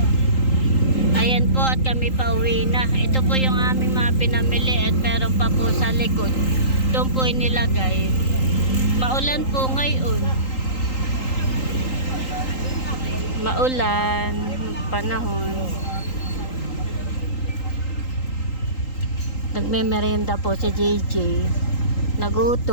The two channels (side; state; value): right; late; 3.8 ms